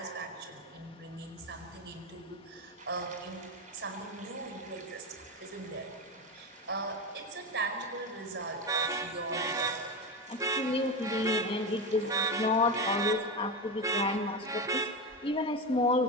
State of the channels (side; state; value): both; normal; correlation 0.18